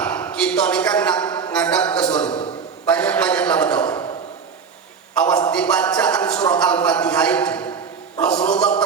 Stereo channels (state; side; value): quieter; left; 6.0 dB